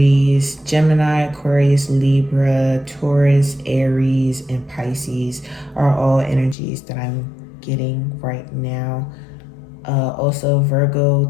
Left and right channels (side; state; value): right; drops out; at 6.6 s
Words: Gemini, Aquarius, Libra, Taurus, Aries, and Pisces are all energies that I'm getting right now. Also Virgo,